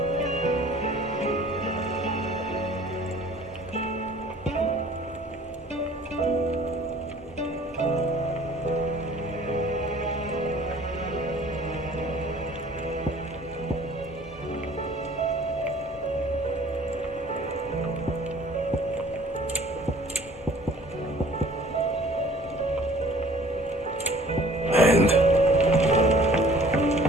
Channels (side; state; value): both; normal; correlation 0.52